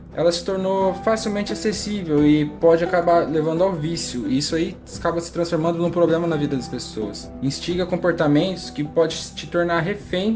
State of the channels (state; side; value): identical; both; correlation 1.00